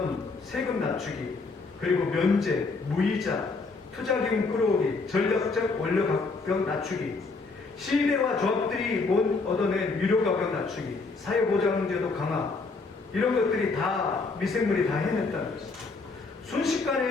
세금 낮추기, 그리고 면제, 무이자, 투자기금 끌어오기, 전략적 원료 가격 낮추기, 시위대와 조합들이 못 얻어낸 유료 가격 낮추기, 사회보장제도 강화, 이런 것들이 다 미생물이 다 해냈다는 것이죠.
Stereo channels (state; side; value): quieter; right; 4.0 dB